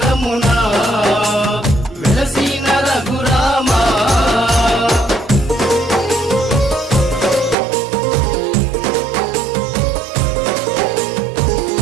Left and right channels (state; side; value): drops out; left; at 7.6 s